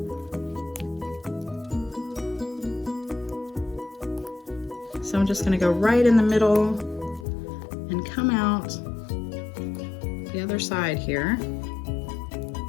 So I'm just going to go right in the middle and come out the other side here.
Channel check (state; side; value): drops out; right; at 7.2 s